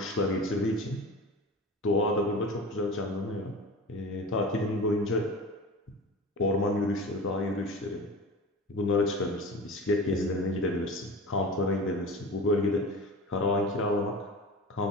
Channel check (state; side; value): normal; both; correlation 0.33